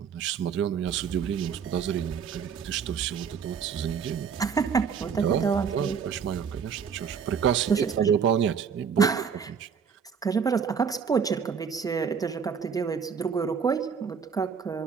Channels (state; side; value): quieter; left; 6.7 dB